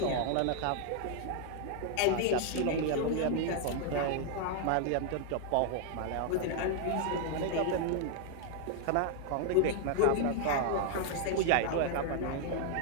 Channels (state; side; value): different; both; correlation 0.00